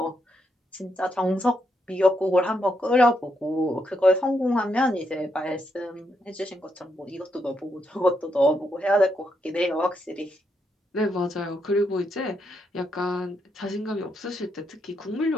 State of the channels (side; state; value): both; normal; correlation 0.80